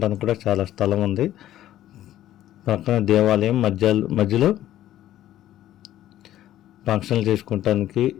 కూడా చాలా స్థలం ఉంది. పక్కన దేవాలయం మధ్యలో ఫంక్షన్లు చేసుకోవటానికి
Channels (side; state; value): right; quieter; 13.1 dB